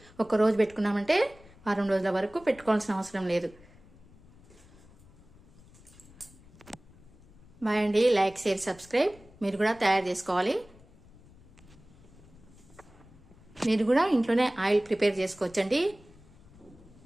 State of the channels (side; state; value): left; noise; rumble, 24 dB below the sound